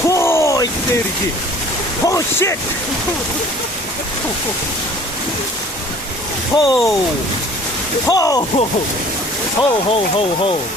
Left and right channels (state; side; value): normal; both; correlation 0.50